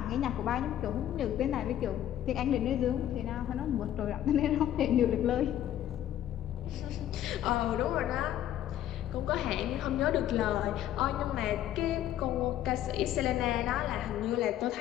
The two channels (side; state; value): right; quieter; 11.8 dB